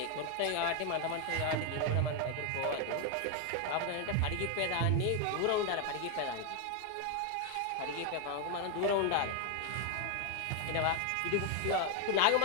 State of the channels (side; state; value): both; different; correlation 0.01